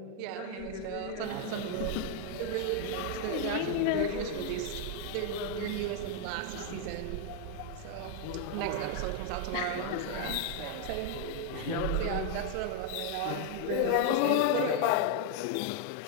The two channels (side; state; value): both; different; correlation 0.00